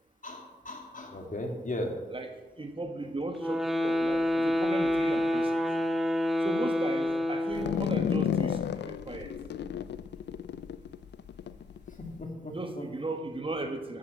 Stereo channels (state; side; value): normal; both; correlation 0.80